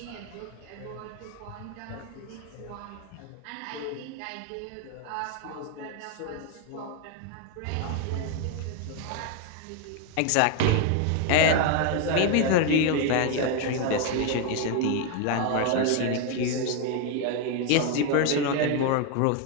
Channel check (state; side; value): different; both; correlation 0.01